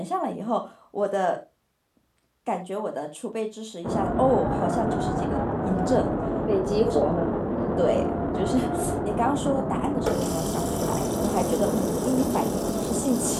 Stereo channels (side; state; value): both; identical; correlation 1.00